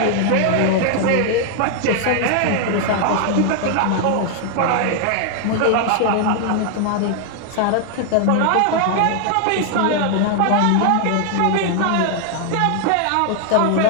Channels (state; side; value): different; both; correlation 0.00